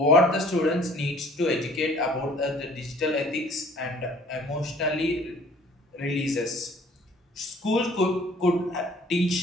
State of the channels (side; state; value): both; normal; correlation 0.53